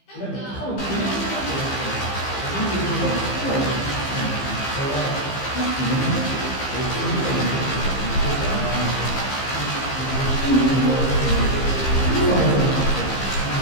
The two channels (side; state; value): right; late; 15 ms